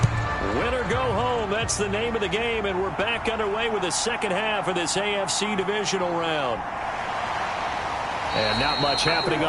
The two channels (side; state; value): both; identical; correlation 1.00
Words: Win or go home, that's the name of the game, and we're back underway with the second half of this AFC divisional round. And not much happening